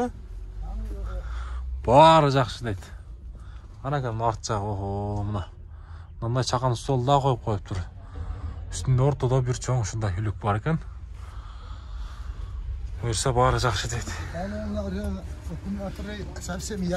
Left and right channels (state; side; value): identical; both; correlation 1.00